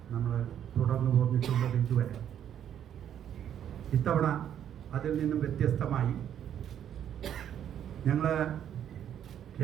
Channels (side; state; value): left; quieter; 9.7 dB